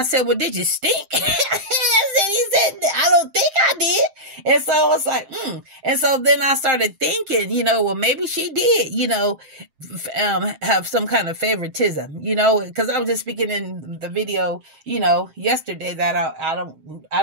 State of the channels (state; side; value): late; left; 7.6 ms